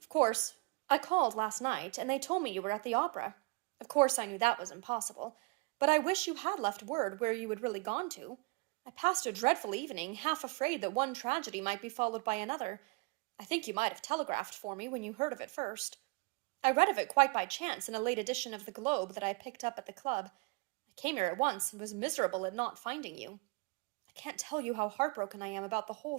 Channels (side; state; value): left; quieter; 29.1 dB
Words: Of course, I knew that was impossible, but I wish you had left word where you had really gone to. I passed a dreadful evening, half afraid that one tragedy might be followed by another. I think you might have telegraphed for me when you heard of it first. I read of it quite by chance in a late edition of the Globe that I picked up at the club. I came here at once and was miserable at not finding you. I can't tell you how heartbroken I am about the whole